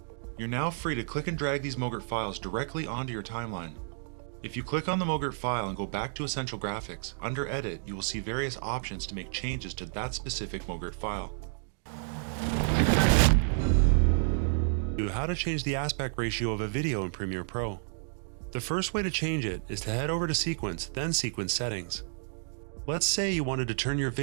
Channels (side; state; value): left; silent; digital silence